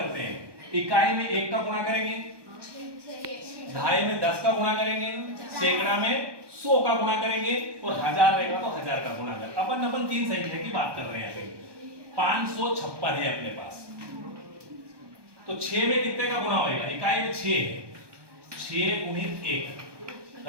हैं। इकाई में 1 का गुणा करेंगे, दहाई में 10 का गुणा करेंगे, सैकड़ा में 100 का गुणा करेंगे और हजार रहेगा तो 1000 का गुणा करेंगे। अपन 3 संख्या की बात कर रहे हैं। 556 है अपने पास, तो 6 में कितने का गुणा होगा, इकाई में 6 है, 6 गुणित 1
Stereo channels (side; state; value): left; late; 1.2 ms